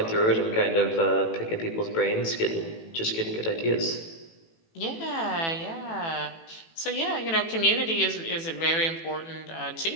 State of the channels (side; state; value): right; late; 18 ms